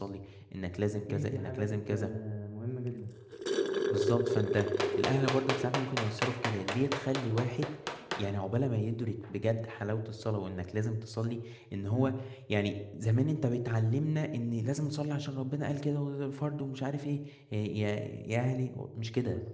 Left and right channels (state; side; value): identical; both; correlation 1.00